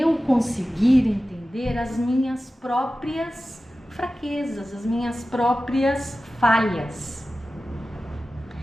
conseguir entender as minhas próprias fraquezas, as minhas próprias falhas.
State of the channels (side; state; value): both; normal; correlation 0.95